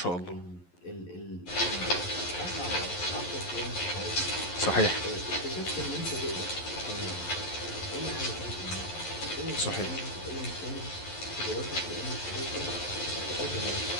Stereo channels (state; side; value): late; right; 11 ms